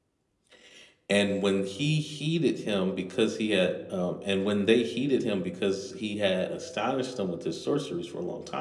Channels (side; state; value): both; identical; correlation 1.00